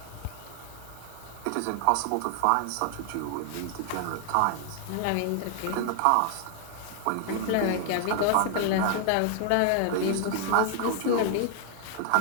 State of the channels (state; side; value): different; both; correlation 0.00